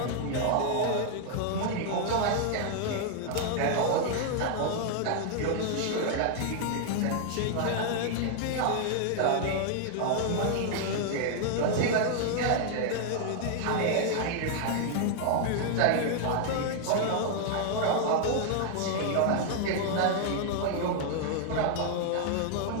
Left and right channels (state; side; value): different; both; correlation 0.00